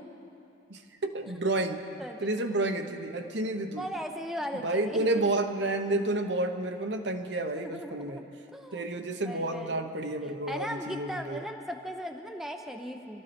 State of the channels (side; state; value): both; normal; correlation 0.19